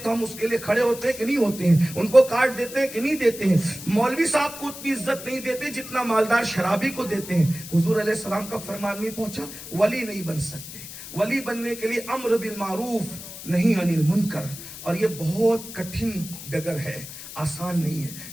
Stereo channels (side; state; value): left; noise; hiss, 12 dB below the sound